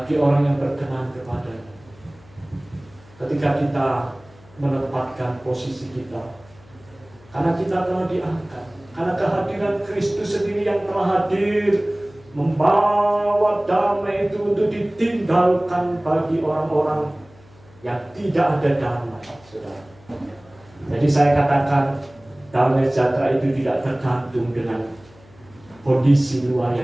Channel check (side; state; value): left; noise; hum, 26 dB below the sound